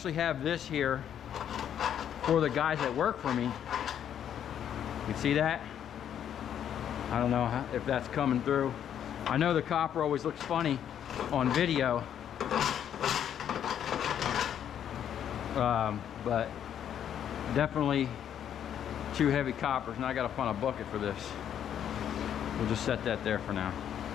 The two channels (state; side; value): quieter; right; 9.5 dB